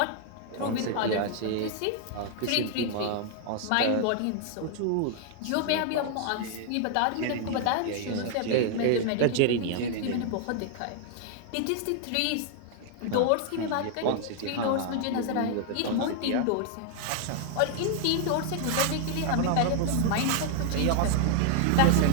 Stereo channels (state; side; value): different; both; correlation 0.00